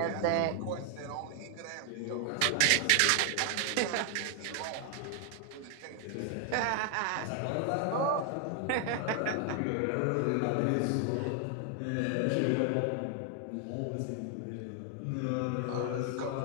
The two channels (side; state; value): both; different; correlation 0.00